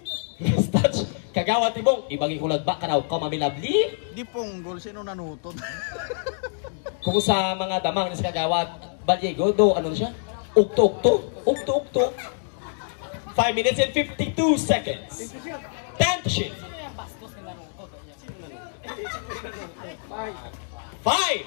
Last touch. Kagawad Timong. Ibagi kulad ba? Karaw ka mamilabli? Di ponggol, sino nanutod? Kung sa mga damang ni Kagawad Baliego, do, ano siya? Ukto-ukto. Ukto-ukto. 5 minutes and 52 seconds. 10 to shoot. 5.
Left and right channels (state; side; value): silent; right; digital silence